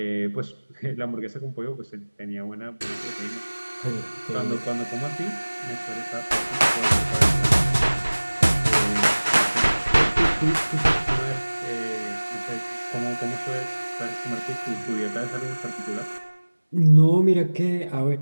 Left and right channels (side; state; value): both; inverted; correlation -1.00